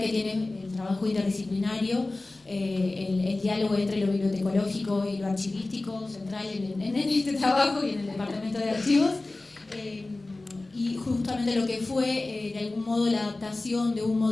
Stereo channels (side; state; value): right; quieter; 3.0 dB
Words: que tiene el trabajo interdisciplinario, el diálogo entre lo bibliotecológico y lo archivístico, central en este trabajo y en el departamento de archivos, y justamente lo que fue de algún modo la adaptación de un